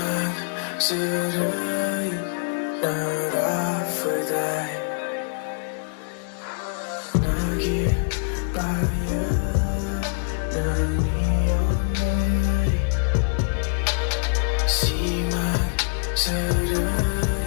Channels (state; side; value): silent; right; digital silence